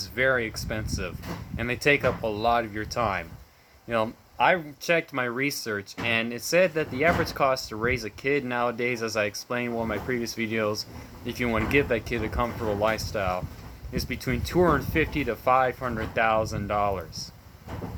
very expensive, and they take up a lot of your time. I checked my research, and it said that the average cost to raise a kid nowadays, as I explained in one of my previous videos, if you want to give that kid a comfortable lifestyle, is between $250,000 to $500,000.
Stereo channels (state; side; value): identical; both; correlation 1.00